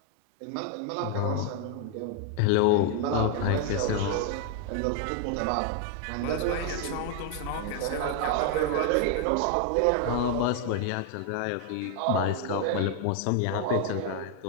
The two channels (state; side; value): different; both; correlation 0.00